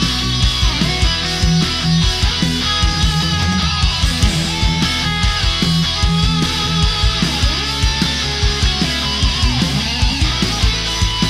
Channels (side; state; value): both; identical; correlation 1.00